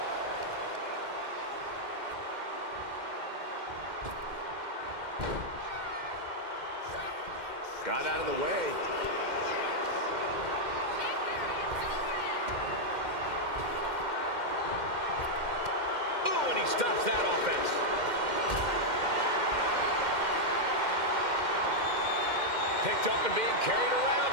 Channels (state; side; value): late; left; 2.1 ms